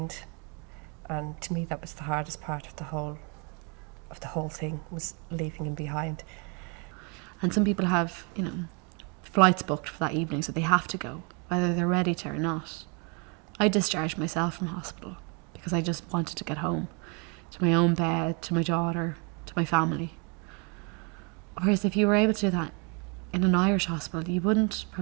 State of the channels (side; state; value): left; quieter; 34.2 dB